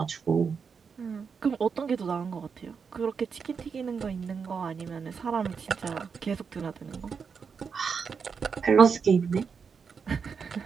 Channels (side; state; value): left; quieter; 5.9 dB